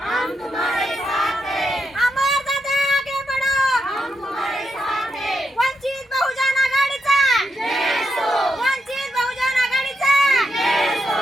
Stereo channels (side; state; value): both; normal; correlation 0.83